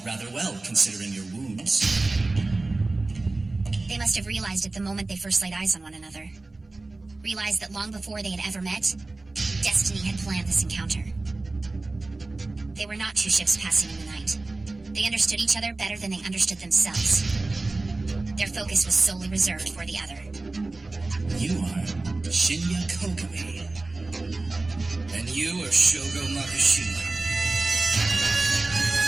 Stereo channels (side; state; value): left; quieter; 3.2 dB